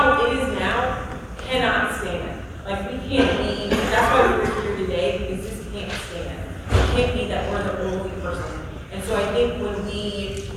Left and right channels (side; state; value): both; identical; correlation 1.00